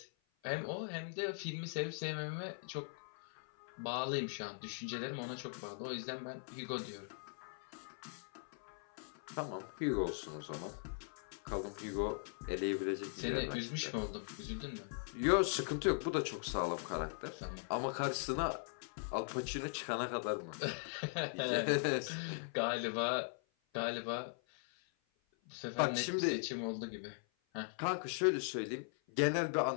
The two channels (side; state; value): right; silent; 51 dB below the other